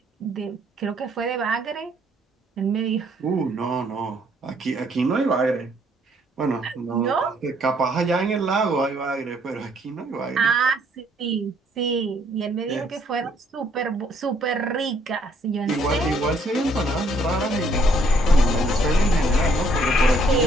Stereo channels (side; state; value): both; normal; correlation 0.66